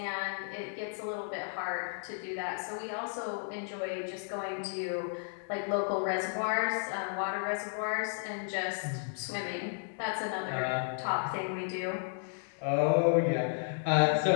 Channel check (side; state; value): right; silent; digital silence